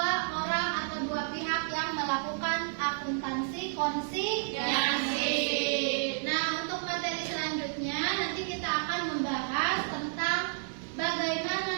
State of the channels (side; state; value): left; silent; 57 dB below the other